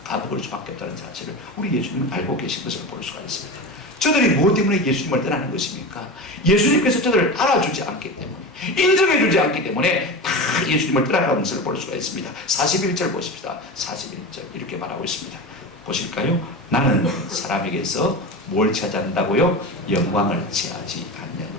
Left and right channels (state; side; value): normal; both; correlation 0.26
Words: 까먹을 수밖에 없다는 사실을 우리 예수님은 알고 계신 것을 볼 수가 있습니다. 저들이 무엇 때문에 예수님을 떠나는 것입니까? 예수님께서 저들을 알아주지 않기 때문에, 인정해주지 않기 때문에 다 예수님을 떠나가는 것을 볼 수가 있습니다. 41절 보십시다. 41절 이렇게 말하고 있습니다. 보실까요? 나는 사람에게서 뭘 찾아낸다고요? 영광을 취하지